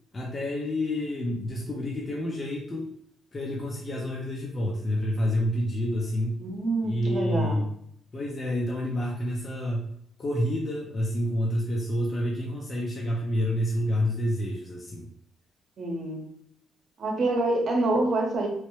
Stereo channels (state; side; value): normal; both; correlation 0.79